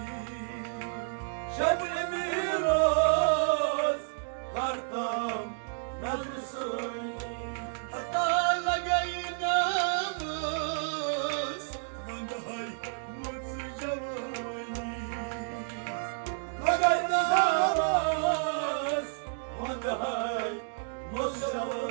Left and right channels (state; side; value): silent; left; digital silence